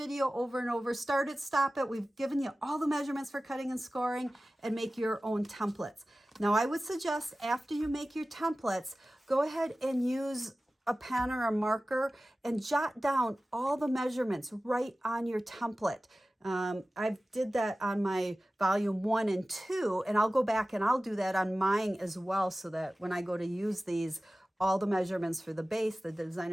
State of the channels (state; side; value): normal; both; correlation 0.96